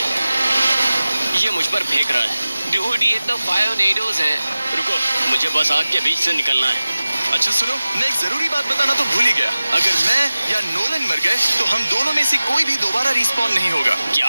ये मुझ पर फेंक रहा है। डूड, ये तो फायोनेडोज है। रुको, मुझे बस आग के बीच से निकलना है। अच्छा सुनो, मैं एक जरूरी बात बताना तो भूल ही गया। अगर मैं या नोलन मर गए तो हम दोनों में से कोई भी दोबारा रिस्पॉन नहीं होगा। क्या?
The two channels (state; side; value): inverted; both; correlation -0.97